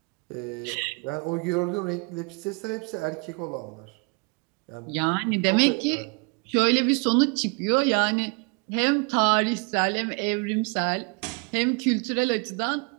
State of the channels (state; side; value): quieter; left; 33.8 dB